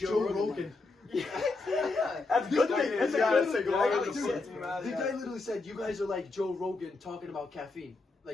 Joe Rogan. That's good thing. That's Yeah, good. it's like, The well, guy- the dude, shit. the guy literally said, you guys are like Joe Rogan talking about caffeine.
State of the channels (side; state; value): right; quieter; 3.5 dB